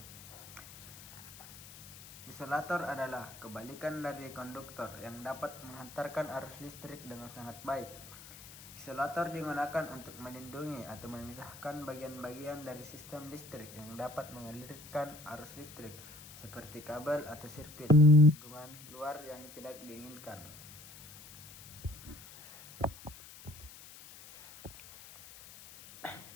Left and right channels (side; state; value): left; noise; hiss, 17 dB below the sound